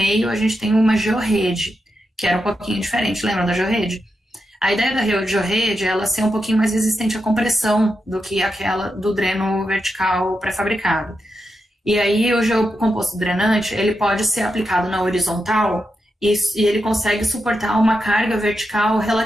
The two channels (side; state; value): both; normal; correlation 0.87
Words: a gente tem uma georrede, que era um pouquinho diferente. Lembram da georrede? A ideia da georrede é ela ser um pouquinho mais resistente à compressão do que aquela do dreno vertical pré-fabricado. E aí o geocomposto drenante, ele pode ser aplicado na horizontal e ele consegue suportar uma carga vertical